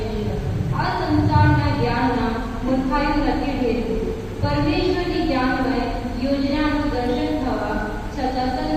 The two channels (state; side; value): identical; both; correlation 1.00